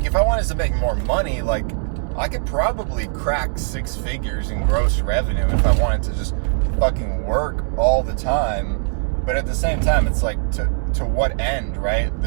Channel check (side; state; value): left; silent; digital silence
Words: if I wanted to make more money, like, I could probably crack 6 figures in gross revenue if I wanted to just fucking work all the time. But at the same time, it's like, to what end, right?